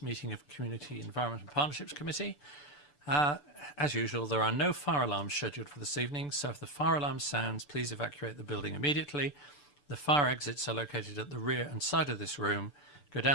meeting of Community Environment and Partnerships Committee. As usual, there are no fire alarms scheduled for this evening, so if the fire alarm sounds, please evacuate the building immediately. The fire exits are located at the rear and side of this room. Go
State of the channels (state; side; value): late; right; 6.8 ms